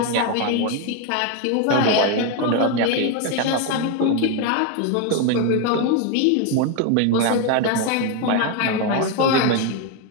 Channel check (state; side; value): different; both; correlation 0.02